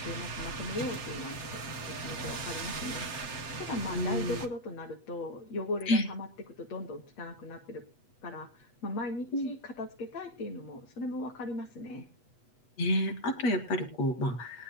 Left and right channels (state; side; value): late; right; 8.1 ms